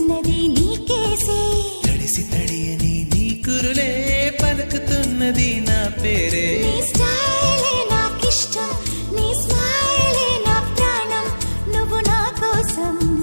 నీకేసే తడిసి తడియని నీ కురులే పలుకుతున్నది నా పేరే నీ స్టైలే నాకిష్టం నీ స్మైలే నా ప్రాణం నువ్వు నా కోసం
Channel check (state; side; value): inverted; both; correlation -1.00